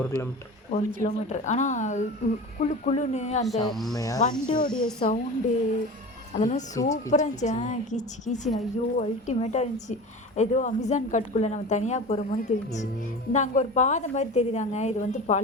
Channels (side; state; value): both; normal; correlation 0.33